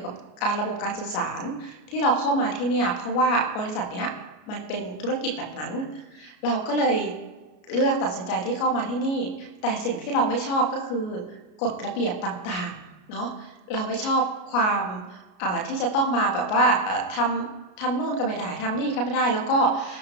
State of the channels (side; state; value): right; late; 33 ms